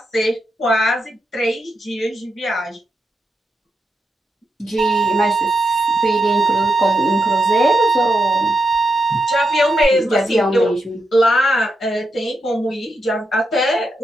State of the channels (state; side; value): normal; both; correlation 0.85